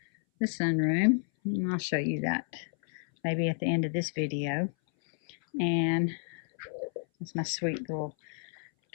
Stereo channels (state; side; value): silent; right; 57 dB below the other